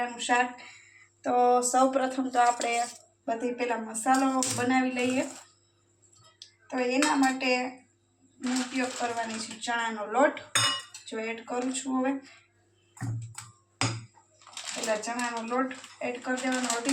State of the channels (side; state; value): both; identical; correlation 1.00